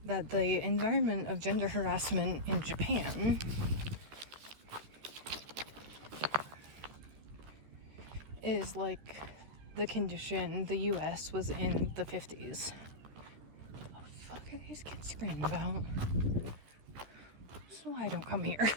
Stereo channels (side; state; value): left; late; 14 ms